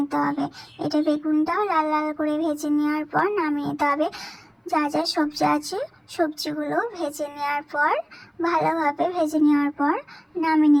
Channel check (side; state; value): both; identical; correlation 1.00